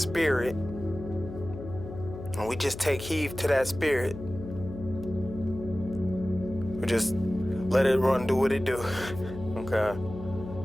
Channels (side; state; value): left; noise; hum, 11 dB below the sound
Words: And we just take heed to that spirit. We just let it run, do what it do. Okay.